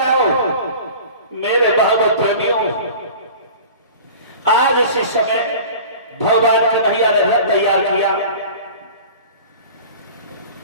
आओ। मेरे भागवत प्रेमियों, आज इसी समय भगवान कन्हैया ने रथ तैयार किया,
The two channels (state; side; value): inverted; both; correlation -0.40